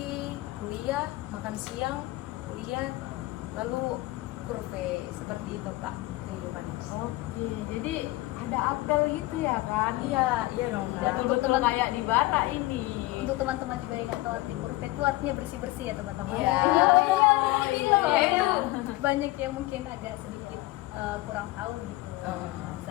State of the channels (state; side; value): quieter; right; 19.3 dB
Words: kuliah, makan siang, kuliah, lalu kurve, seperti itu kak kehidupannya. Oke, jadi ada apel gitu ya kan? Iya dong kak. Betul-betul kayak di bara ini. Untuk teman-teman juga yang nggak tahu arti kurve itu artinya bersih-bersih ya teman-teman. Iya. Iya, Iya, itu. banyak yang mungkin agak sedikit kurang tahu gitu Oh.